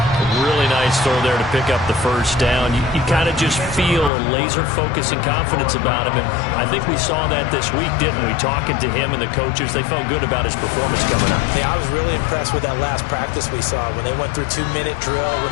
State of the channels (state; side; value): drops out; right; at 4.1 s